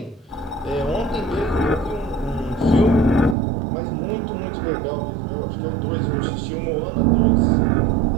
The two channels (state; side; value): drops out; left; at 3.4 s